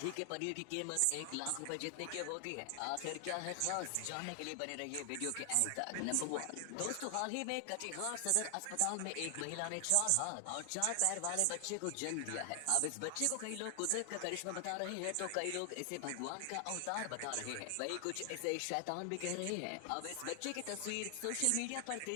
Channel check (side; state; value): both; different; correlation 0.00